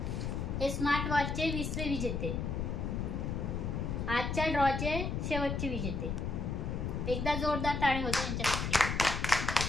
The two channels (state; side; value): noise; left; rumble, 2 dB below the sound